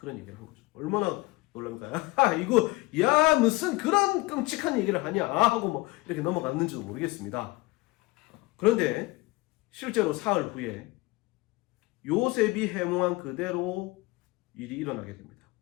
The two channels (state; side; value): quieter; right; 22.1 dB